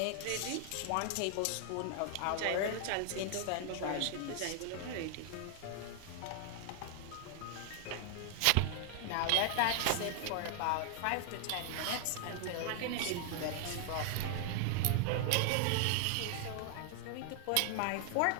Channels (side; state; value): both; different; correlation 0.00